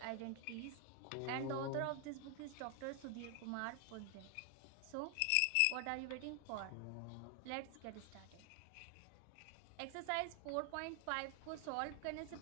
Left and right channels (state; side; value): different; both; correlation 0.00